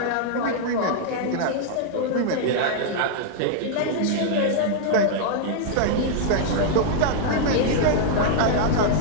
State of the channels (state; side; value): different; both; correlation -0.01